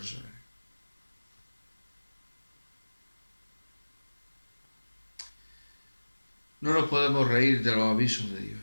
No nos podemos reír de los avisos de Dios.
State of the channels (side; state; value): both; inverted; correlation -1.00